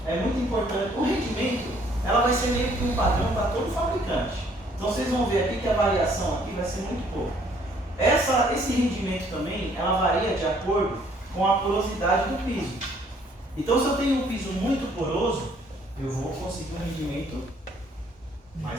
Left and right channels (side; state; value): both; normal; correlation 0.62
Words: é muito importante. O rendimento, ela vai ser meio que um padrão para todo fabricante. Então vocês vão ver aqui que a variação aqui vai ser muito pouco. Esse rendimento também, ela varia de acordo com a porosidade do piso. Então se eu tenho um piso muito poroso, eu vou conseguir um rendimento